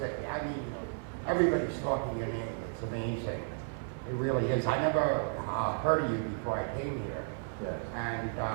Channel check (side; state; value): left; silent; digital silence